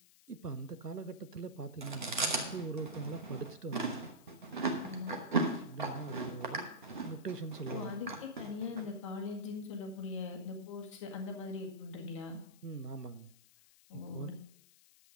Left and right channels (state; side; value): noise; left; hiss, 24 dB below the sound